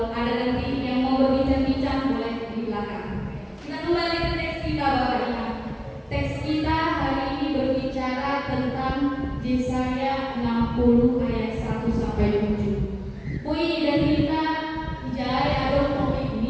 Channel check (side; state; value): both; identical; correlation 1.00